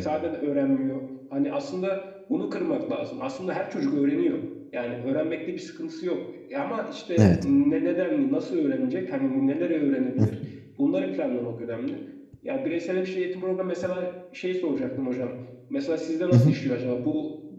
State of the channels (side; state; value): both; identical; correlation 1.00